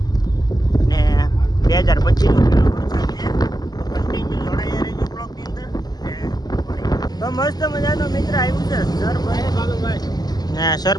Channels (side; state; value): right; late; 0.19 ms